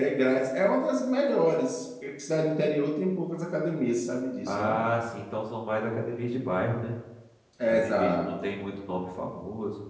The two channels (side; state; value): both; identical; correlation 1.00